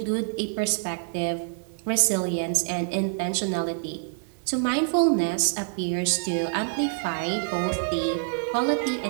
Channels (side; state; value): left; silent; digital silence